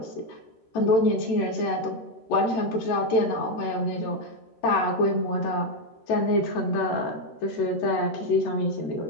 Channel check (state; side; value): late; right; 13 ms